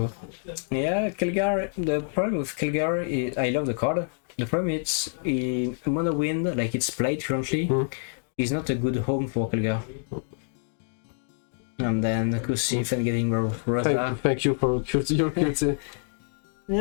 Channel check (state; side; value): silent; right; digital silence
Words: Yeah, Kelgar. The problem with Kelgar is I love the card. The problem is in Mono Wind, like it's played currently, is not a good home for Kelgar. And then Kusif and getting Rosa. Thank you for your QT.